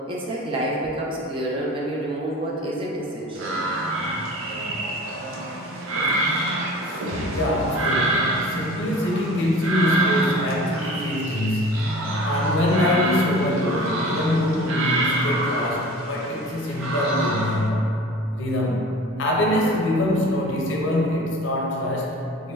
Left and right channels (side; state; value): both; normal; correlation 0.42